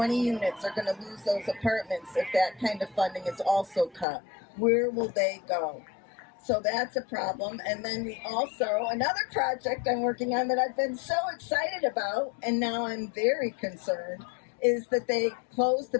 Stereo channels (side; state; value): right; drops out; at 4.0 s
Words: units are going to lose those apartments if that kind of funding is also cut. Where will they go? So that's a problem. And then we also, another project I'm working on that I've been so excited about, and now I'm very concerned, is that they closed the